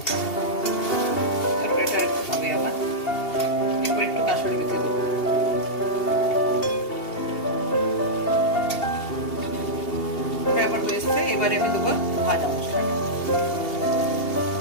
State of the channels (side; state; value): right; late; 2.8 ms